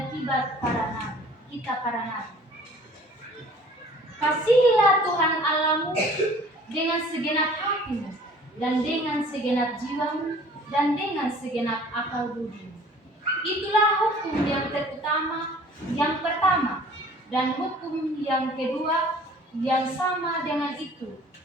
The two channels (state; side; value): normal; both; correlation 0.51